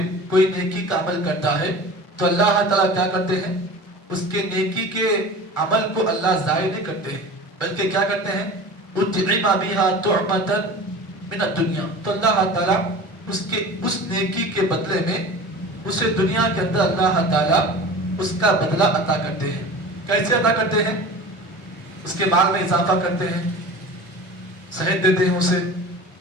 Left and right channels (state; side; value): normal; both; correlation 0.37